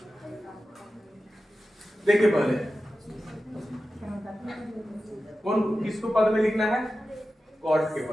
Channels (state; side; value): normal; both; correlation 0.93